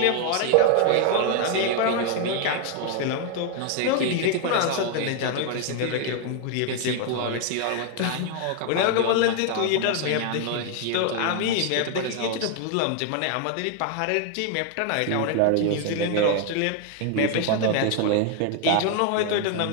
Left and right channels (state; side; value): different; both; correlation 0.00